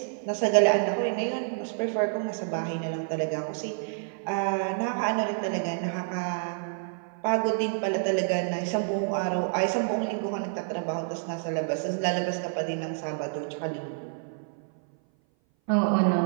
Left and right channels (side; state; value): left; silent; 57 dB below the other